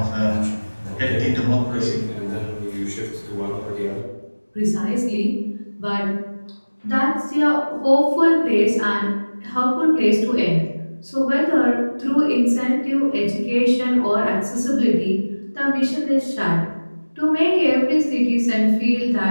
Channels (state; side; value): inverted; both; correlation -1.00